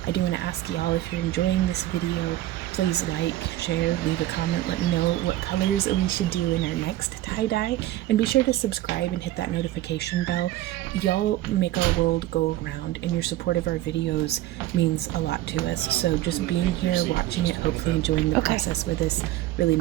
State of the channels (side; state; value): left; quieter; 15.0 dB